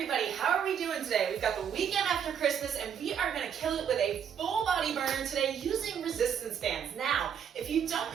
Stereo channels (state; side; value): quieter; left; 8.1 dB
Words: how are we doing today? We've got the weekend after Christmas, and we are going to kill it with a full body burner today using resistance bands. Now, if you don't